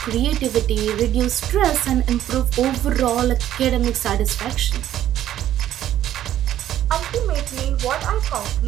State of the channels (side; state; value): left; quieter; 12.0 dB